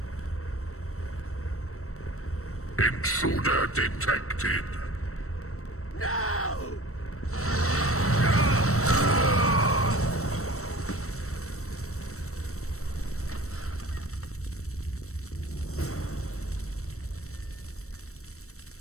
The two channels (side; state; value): right; late; 0.64 ms